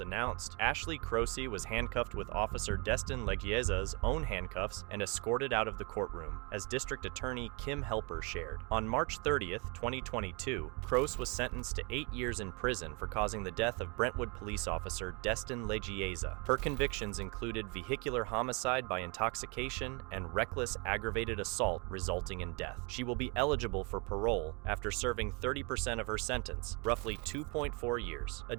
Ashley Kroese was handcuffed with Officer Destin Legieza's own handcuffs and escorted out of the courtroom, as District Attorney Kim Helper shared. On March 30th, 2022, Kroese was sentenced to 8 years in prison for causing the death of Brentwood police officer Destin Legieza. Her convictions included vehicular homicide by intoxication and reckless aggravated assault resulting in death. She will be eligible for parole after serving 30% of her sentence, roughly 2.4 years.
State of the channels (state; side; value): quieter; left; 31.8 dB